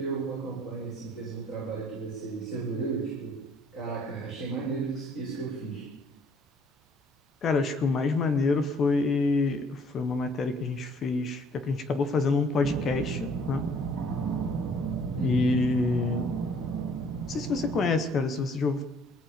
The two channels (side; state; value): both; normal; correlation 0.60